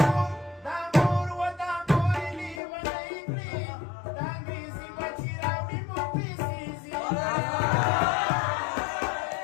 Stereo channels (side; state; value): right; drops out; at 2.6 s